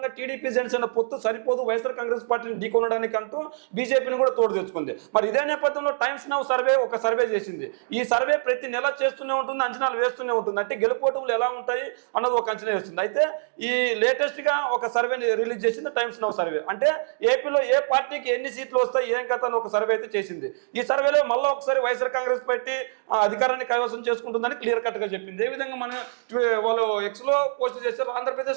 టీడీపీ జనసేన పొత్తు సరిపోదు, వైఎస్ఆర్ కాంగ్రెస్ పార్టీని ఢీకొనడానికి అంటూ బీజేపీని కూడా తోడు తెచ్చుకుంది. మరి ఇదే నేపథ్యంలో టైమ్స్ నౌ సర్వే ఒక సర్వే చేసింది. ఈ సర్వే ప్రతి నెల చేస్తూనే ఉంటుంది, అంచనాలు వేస్తూనే ఉంటుంది. అంటే గెలుపోటములు ఎలా ఉంటాయి అన్నది ఒక అంచనా వేస్తుంది. అయితే ఈ లేటెస్ట్ గా ఒక సర్వేని రిలీజ్ చేసింది టైమ్స్ నౌ సర్వే. అంటే ఏపీలో ఏ పార్టీకి ఎన్ని సీట్లు వస్తాయి, ఏం కథ అని ఒక సర్వే అయితే చేసింది. ఈ సర్వేలో మళ్ళీ ఒకసారి వైఎస్ఆర్ కాంగ్రెస్ పార్టీ అధికారాన్ని కైవసం చేసుకుంటుందని క్లియర్ కట్ గా చెప్పింది. ఏ విధంగా మనం వాళ్ళు ఎక్స్ లో పోస్ట్ చేశారు.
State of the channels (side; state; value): left; silent; digital silence